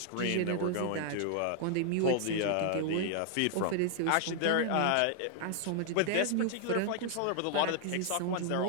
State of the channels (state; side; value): different; both; correlation 0.00